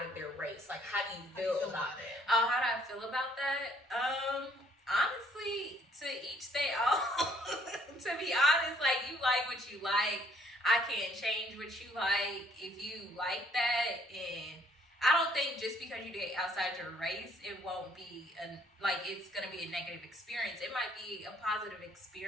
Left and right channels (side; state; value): both; normal; correlation 0.64